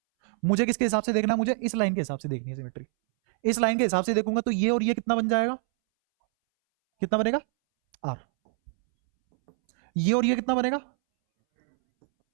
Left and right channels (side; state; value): left; silent; 61 dB below the other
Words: मुझे किसके हिसाब से देखना है? मुझे इस लाइन के हिसाब से देखनी है सिमेट्री। इस लाइन के हिसाब से देखूंगा तो ये और ये कितना बन जाएगा? कितना बनेगा? आर। ये और ये कितना बनेगा?